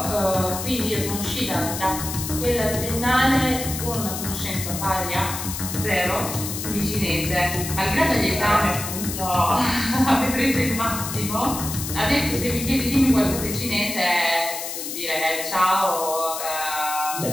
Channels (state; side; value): noise; left; hiss, 6 dB below the sound